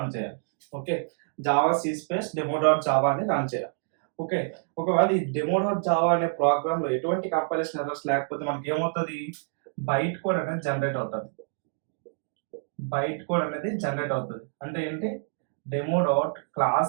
చేయాలి. Okay, Java c space demo.java అని రన్ చేయాలి. ఓకే, ఒకవేళ ఈ demo.java అనే ప్రోగ్రామ్ లో ఎటువంటి కంపైలేషన్ ఎర్రర్స్ లేకపోతే మనకి ఏమవుతుంది, బైట్ కోడ్ అనేది జనరేట్ అవుతుంది. అంటే ఏంటి, demo.class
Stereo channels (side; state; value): left; silent; digital silence